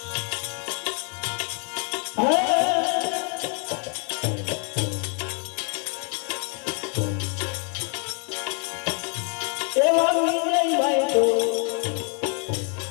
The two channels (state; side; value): quieter; right; 38.1 dB